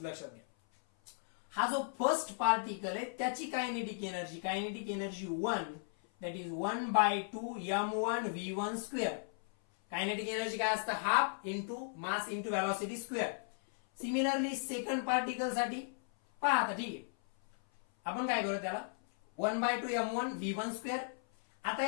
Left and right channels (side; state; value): right; silent; 54 dB below the other